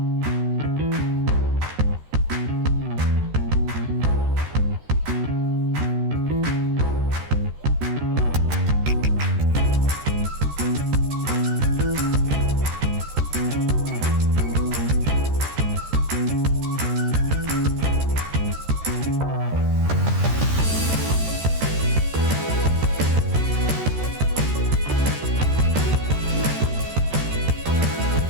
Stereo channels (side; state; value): left; late; 13 ms